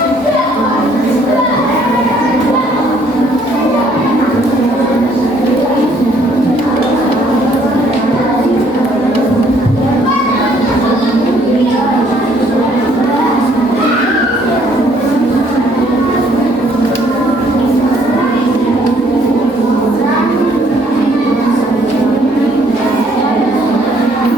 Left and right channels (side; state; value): both; normal; correlation 0.64